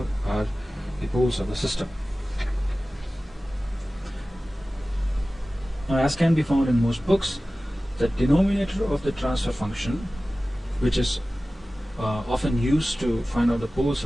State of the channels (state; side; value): normal; both; correlation 0.96